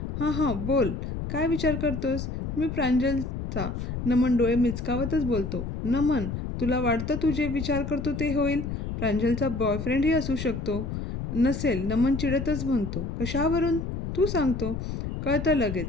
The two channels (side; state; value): left; noise; rumble, 5 dB below the sound